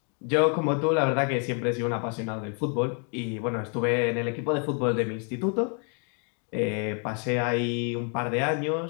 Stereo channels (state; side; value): quieter; right; 40.0 dB